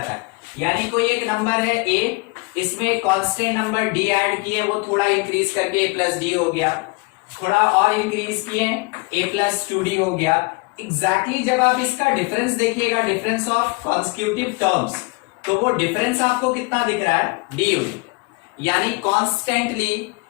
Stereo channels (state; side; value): quieter; right; 28.1 dB